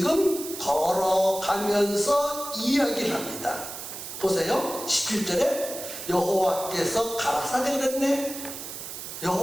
걸어가면서 이야기를 합니다. 보세요. 17절에 여호와께서 가라사대 그랬네.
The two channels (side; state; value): right; noise; hiss, 9 dB below the sound